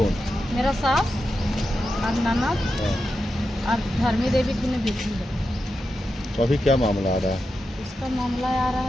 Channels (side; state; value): both; normal; correlation 0.89